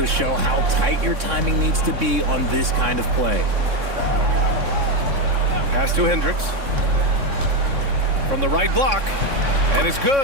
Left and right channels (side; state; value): left; late; 3.6 ms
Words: show how tight your timing needs to be on this kind of play. Pass to Hendricks. From the right block. And it's